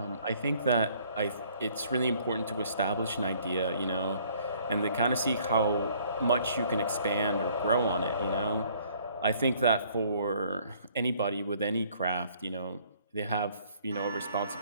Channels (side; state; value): both; inverted; correlation -0.60